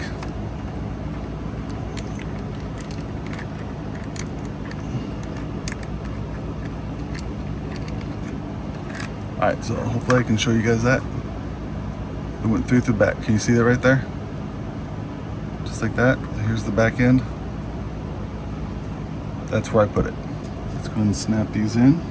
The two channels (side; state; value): both; identical; correlation 1.00